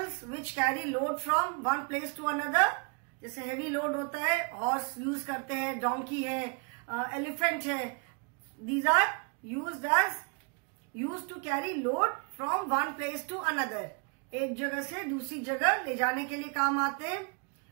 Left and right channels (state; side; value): quieter; left; 35.0 dB